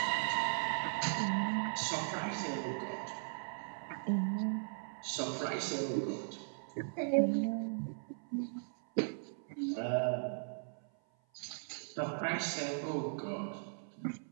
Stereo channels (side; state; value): left; silent; 52 dB below the other